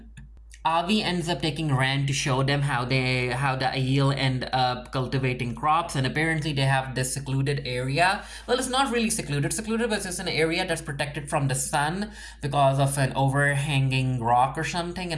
Avi ends up taking Rand to show them how the Aiel end up cultivating crops, and apparently they have this secluded area. Well, it's not really secluded, but it's an area that's protected from the sun because of an overhanging rock or something,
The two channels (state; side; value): identical; both; correlation 1.00